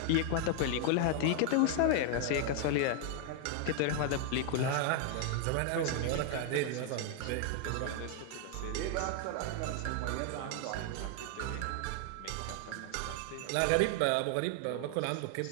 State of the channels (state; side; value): different; both; correlation 0.00